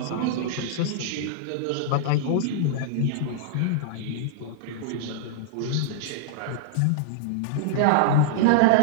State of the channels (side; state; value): both; different; correlation -0.01